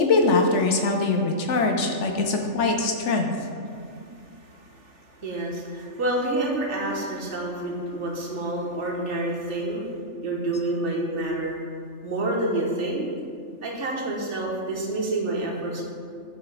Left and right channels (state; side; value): late; right; 3.4 ms